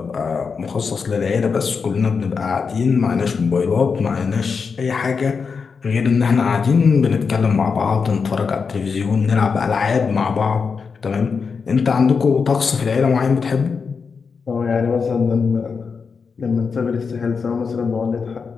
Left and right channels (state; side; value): quieter; right; 5.4 dB